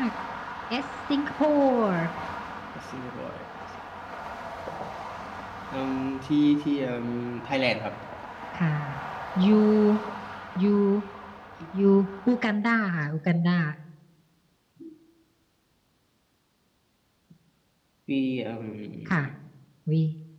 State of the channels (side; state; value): both; identical; correlation 1.00